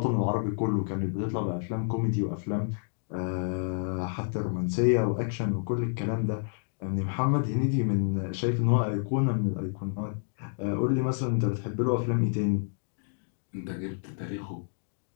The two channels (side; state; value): right; silent; digital silence